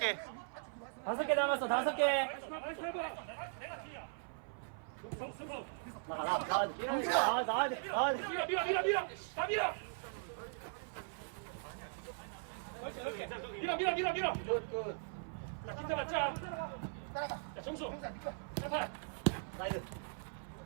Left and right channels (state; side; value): silent; left; 52 dB below the other